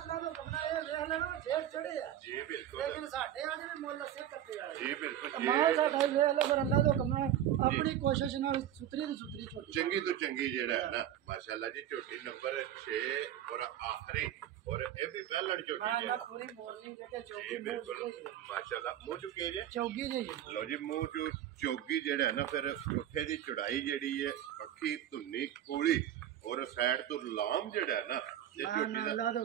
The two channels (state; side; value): quieter; left; 11.3 dB